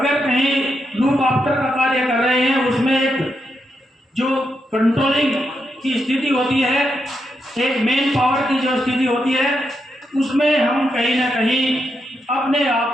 कहीं लूप आफ्टर का कार्य कर रहे हैं, उसमें एक जो कंट्रोलिंग की स्थिति होती है, एक मेन पावर की जो स्थिति होती है, उसमें हम कहीं ना कहीं अपने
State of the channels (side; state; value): both; normal; correlation 0.83